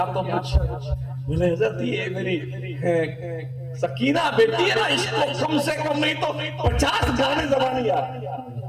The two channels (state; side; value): identical; both; correlation 1.00